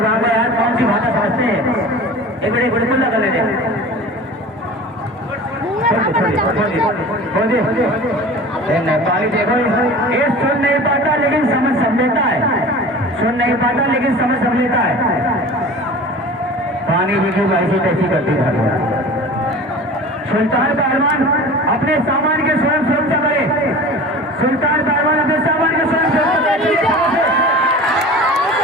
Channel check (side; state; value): both; normal; correlation 0.38